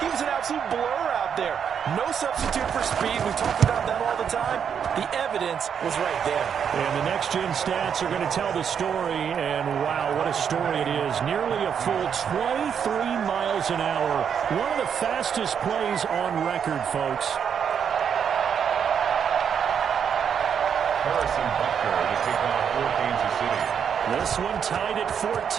was an absolute blur out there. No substitute for speed. We talk about that all the time. The evidence was right there. And the next-gen stats are going to tell the story, and wow, what a story it is. Nearly a full 23 miles an hour. One of the fastest plays on record, folks. Harrison Butker to kick off for Kansas City. This one tied at 14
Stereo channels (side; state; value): left; quieter; 7.6 dB